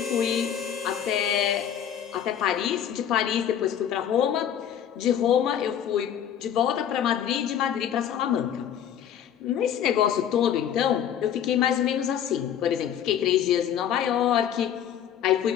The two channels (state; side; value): quieter; right; 9.5 dB